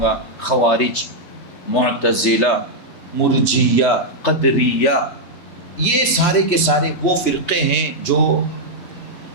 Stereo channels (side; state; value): right; late; 3.1 ms